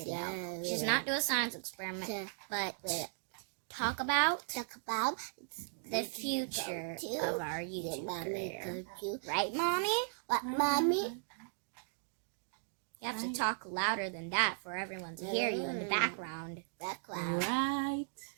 which is not do a science experiment, but talk about the future of our YouTube career. Right, Mommy? What, Mommy? You have to talk louder than that for everyone to hear you in the background. Right.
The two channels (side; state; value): left; silent; digital silence